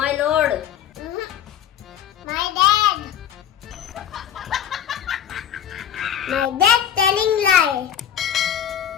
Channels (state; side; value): quieter; right; 9.5 dB